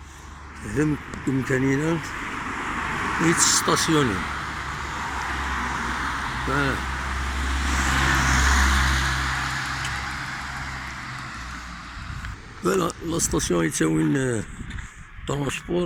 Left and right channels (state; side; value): identical; both; correlation 1.00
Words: هذا بإمكاننا يتستاسيوني فوالا فوالا لا ستاسيون يتساوين